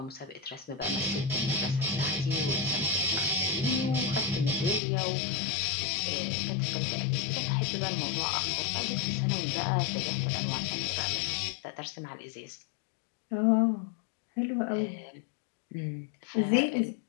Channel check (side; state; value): right; drops out; at 4.8 s